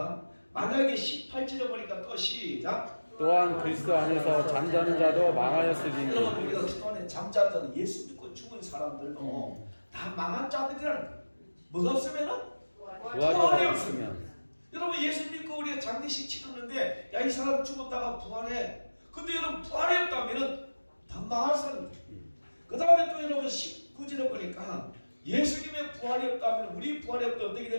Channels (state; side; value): inverted; both; correlation -1.00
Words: 만약에 18절에 보니까 또 시작. 또한 그리스도 안에서 잠자는 자도 망하였으리니. 여러분 우리가 그동안에 잠자는 자는 예수 믿고 죽은 사람들도 다 망한 자들이라는 거예요. 뭐가 없으면은 부활이 없으면. 여러분 예수 믿고 우리가 장례식 치렀는데 야 이 사람 죽었다가 부활해. 근데 여러분 부활이 없다면은 다 망할 사람들. 그 다음에 또 여러분 19절에 보니까 예수님의 부활이 없다면 우리 부활이 없다면 어떻게